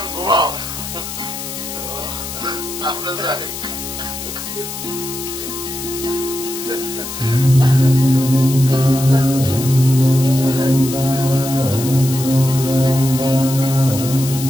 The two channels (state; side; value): noise; left; hiss, 8 dB below the sound